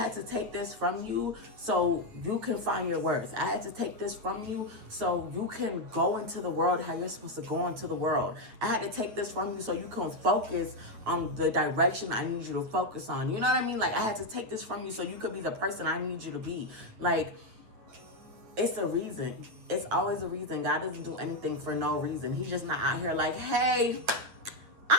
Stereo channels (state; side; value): late; left; 9.0 ms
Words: to take this from you so you can find your worth. I had to take this from you so you can go into the world how you're supposed to go into the world. I had to take this from you so you can focus on the direction I need you to focus on. You know what I mean? Like, I had to take this from you so you could be the person I need you to be. Like, it's a reason. It's always a reason. God doesn't do anything for no reason. He's just not out here like, hey,